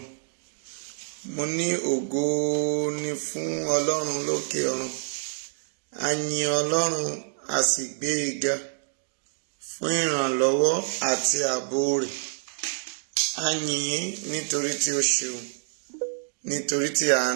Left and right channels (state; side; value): silent; left; digital silence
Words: Mo ní ògo ní fún Ọlọ́run lókè ọ̀run. A yìn Ọlọ́run, a sì gbé e ga fún ìrànlọ́wọ́ àti ààbò rẹ̀. A yìn ín nítorí tí ó ṣeun, nítorí tí